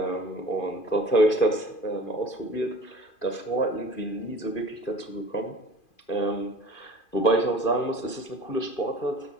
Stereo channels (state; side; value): late; right; 2.5 ms